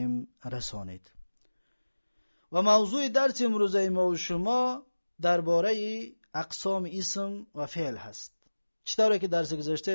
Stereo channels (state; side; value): inverted; both; correlation -1.00